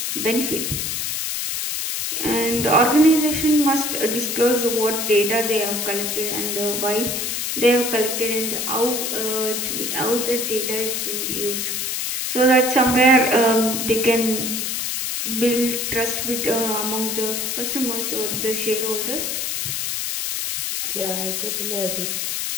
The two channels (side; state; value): left; noise; hiss, 2 dB below the sound